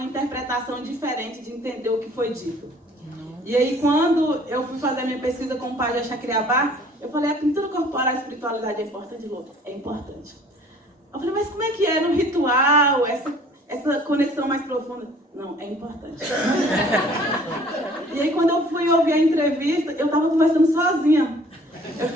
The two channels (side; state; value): both; normal; correlation 0.53